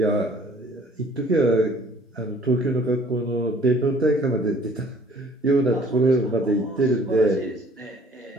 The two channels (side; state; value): both; normal; correlation 0.55